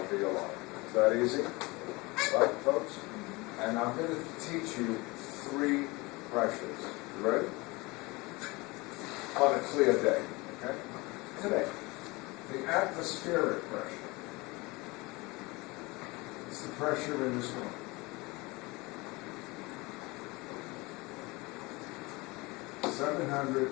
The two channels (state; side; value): quieter; right; 24.1 dB